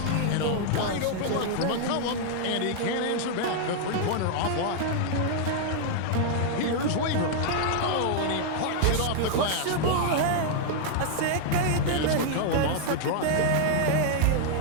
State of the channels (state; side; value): different; both; correlation -0.01